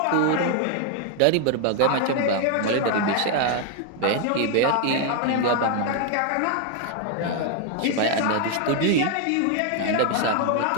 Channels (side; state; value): both; different; correlation 0.00